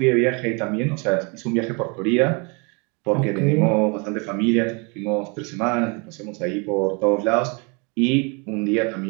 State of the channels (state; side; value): quieter; left; 32.0 dB